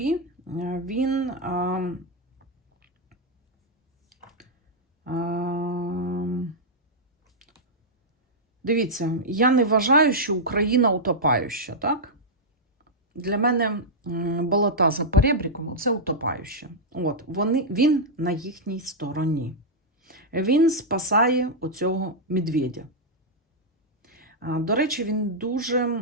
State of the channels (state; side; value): normal; both; correlation -0.07